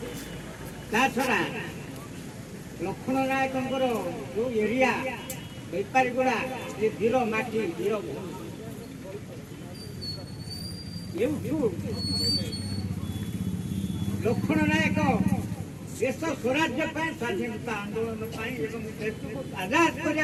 छड़ा लक्ष्मण नायक जो एरिया बेपारीगुड़ा ये वीर माटी वीर लक्ष्मण नायक देश स्वराज्य स्वाधीनता आंदोलन देश को आजाद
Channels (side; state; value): both; identical; correlation 1.00